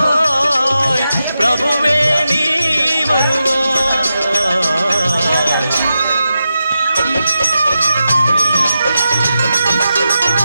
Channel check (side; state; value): both; inverted; correlation -0.89